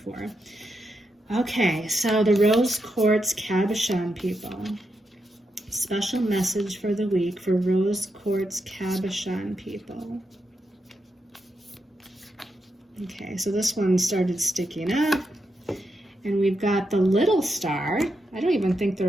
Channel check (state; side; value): normal; both; correlation 0.84